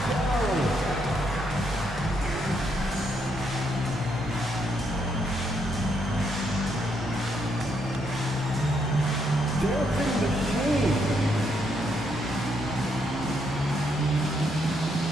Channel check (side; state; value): both; normal; correlation 0.76